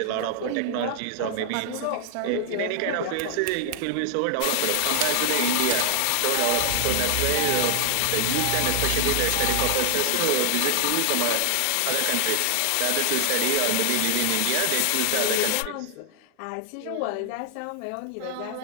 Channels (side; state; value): both; different; correlation -0.01